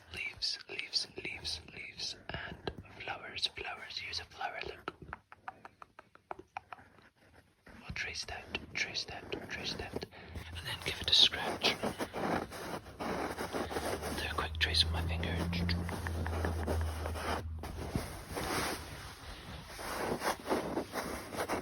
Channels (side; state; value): both; identical; correlation 1.00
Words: Leaves, and flowers. Here's a flower, look. I'll trace that, and then give it a scratch. Do a quick trace with my finger.